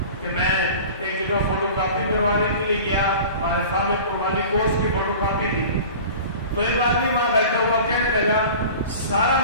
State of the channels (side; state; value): both; inverted; correlation -0.40